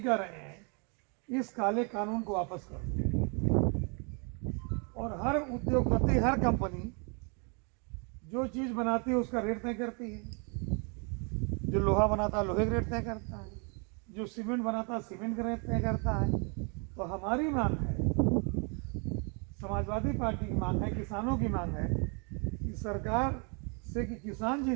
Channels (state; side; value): quieter; left; 36.1 dB